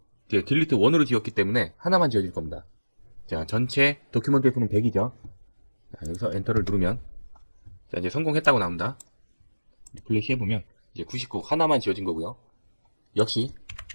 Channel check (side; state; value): both; inverted; correlation -1.00